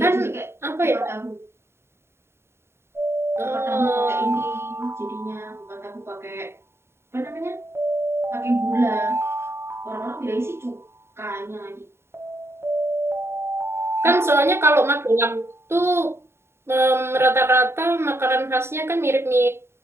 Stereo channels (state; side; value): late; left; 0.12 ms